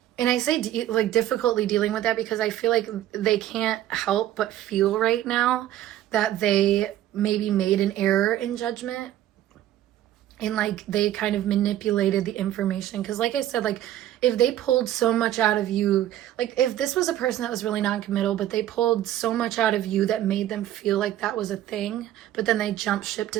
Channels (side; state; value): left; quieter; 12.9 dB